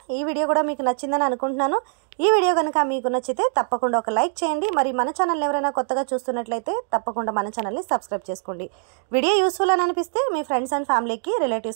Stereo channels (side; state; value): left; silent; digital silence